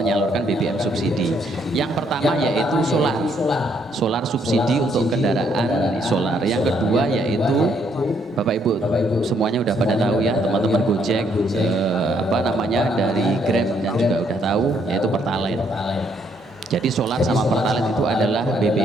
BBM subsidi. Yang pertama yaitu solar subsidi untuk kendaraan solar. Yang kedua yaitu Bapak Ibu semuanya udah pada tahu ya, teman-teman Gojek dari Grab dan juga udah tahu, yaitu Pertalite. Jadi solar sama pertalite itu adalah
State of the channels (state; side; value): normal; both; correlation 0.70